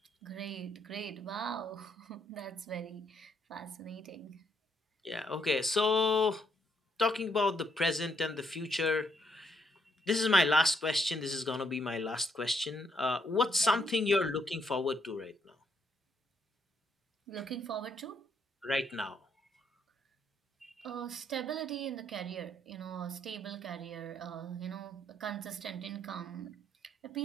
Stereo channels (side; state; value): both; normal; correlation 0.74